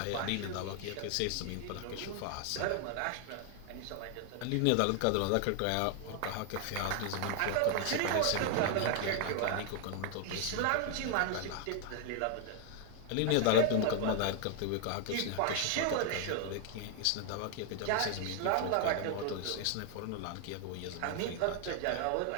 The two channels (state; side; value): different; both; correlation 0.00